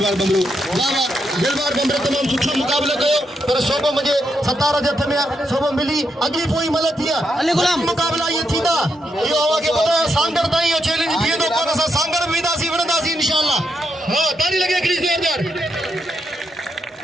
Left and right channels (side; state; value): both; normal; correlation 0.81